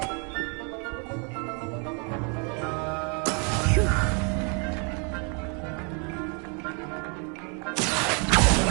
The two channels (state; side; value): quieter; left; 35.9 dB